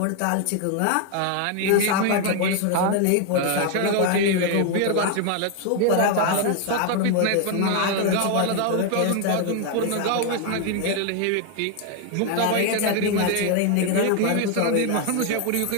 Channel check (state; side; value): different; both; correlation 0.01